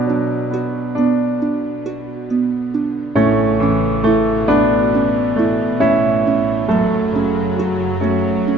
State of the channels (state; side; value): normal; both; correlation 0.63